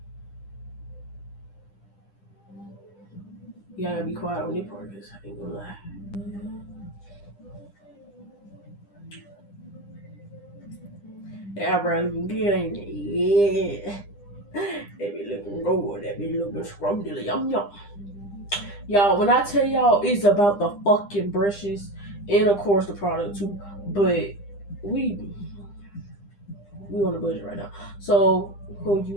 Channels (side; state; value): right; late; 9.9 ms